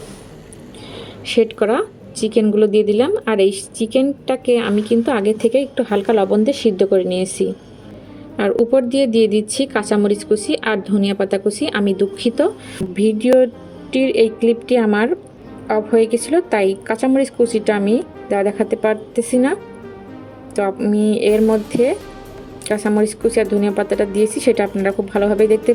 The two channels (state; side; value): identical; both; correlation 1.00